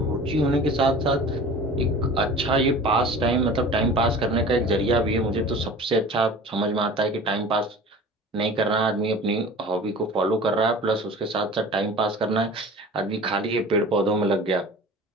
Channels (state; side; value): normal; both; correlation 0.40